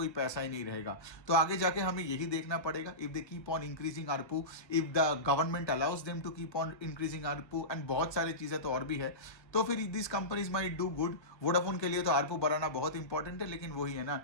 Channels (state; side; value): late; right; 1.4 ms